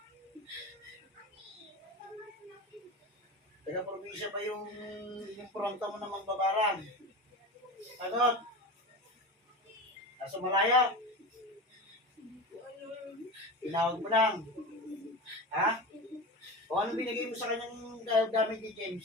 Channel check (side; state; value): both; normal; correlation 0.27